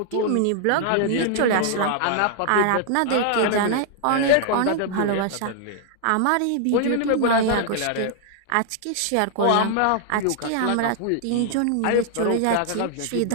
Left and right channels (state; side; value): different; both; correlation 0.00